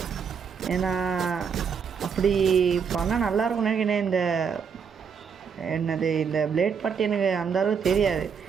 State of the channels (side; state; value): left; quieter; 6.6 dB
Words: ஏன்னா அப்படி பண்ணால் நல்லாயிருக்கும்னு நினைக்கிறேன். இந்த பிளேட் பற்றி எனக்கு அந்த அளவுக்கு தெரியாது.